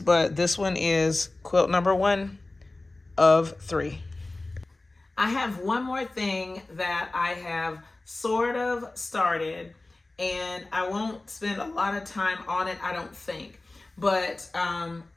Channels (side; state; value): right; quieter; 3.0 dB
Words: this one is quilt number 1 of 3. I have one more thing that I have sort of started, and I won't spend a lot of time on it, I don't think. But